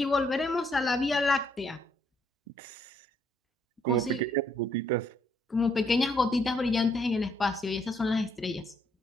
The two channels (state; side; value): normal; both; correlation 0.70